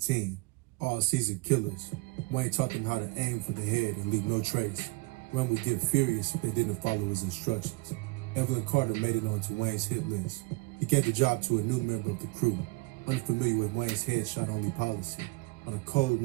team. All seasoned killers. Wayne taught them how to aim for the head and leave no trace. Wayne would get furious if they didn't follow his instructions. Evelyn Carter made it onto Wayne's hit list. He gave the job to a new member of the crew, unfamiliar with Wayne's headshot-only policy. On a cold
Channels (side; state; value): left; quieter; 25.8 dB